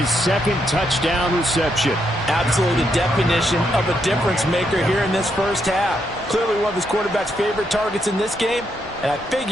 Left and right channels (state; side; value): normal; both; correlation 0.79